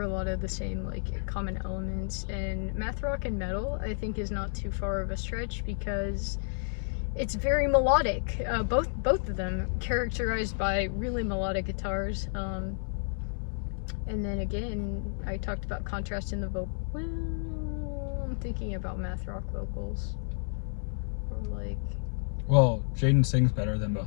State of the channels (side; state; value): right; silent; 57 dB below the other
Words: a lot of the same like common elements, and math rock and metal I think is not too far of a stretch because it's very melodic. Both of them characterized by really melodic guitars. And then again, I talked about contrast in the vocal. Well, I'm thinking about math rock vocals. Or like. Well, Jaden sings better than